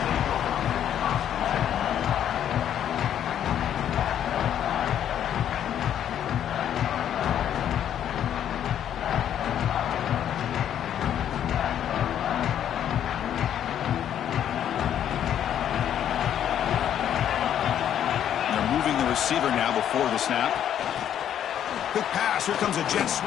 Receiver now before the snap. Quick pass. Here comes a jet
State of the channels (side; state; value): right; quieter; 10.0 dB